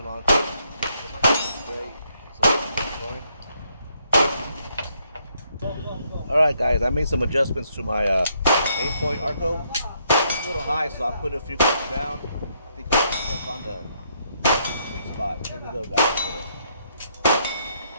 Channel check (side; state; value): both; inverted; correlation -0.74